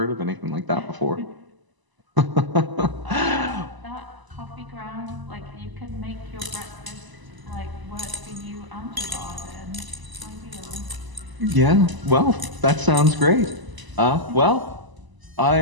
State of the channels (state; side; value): late; left; 1.0 ms